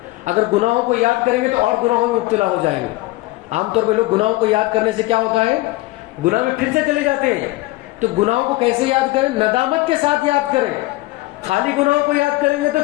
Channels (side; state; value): right; quieter; 19.7 dB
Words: اگر گناہوں کو یاد کریں گے تو اور گناہوں میں مبتلا ہو جائیں گے. عام طور پہ لوگ گناہوں کو یاد کرنے سے کیا ہوتا ہے، گناہ میں پھر سے چلے جاتے ہیں. تو گناہوں کو کیسے یاد کریں؟ ندامت کے ساتھ یاد کریں. خالی گناہوں کو یاد کریں گے تو